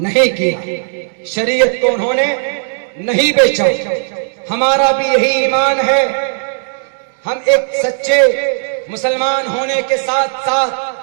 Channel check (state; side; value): silent; left; digital silence